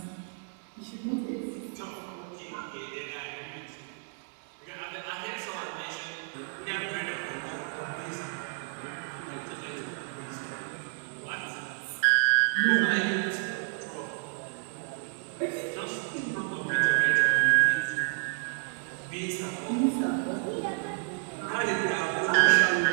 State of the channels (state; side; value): silent; left; 57 dB below the other